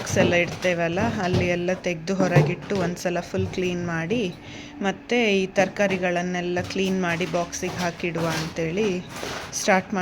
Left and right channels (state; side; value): identical; both; correlation 1.00